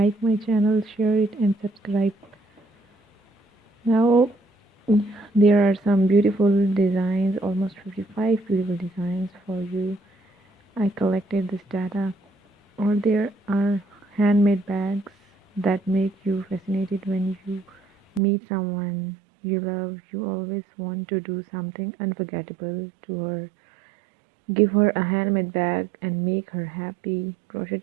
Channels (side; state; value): left; drops out; at 18.2 s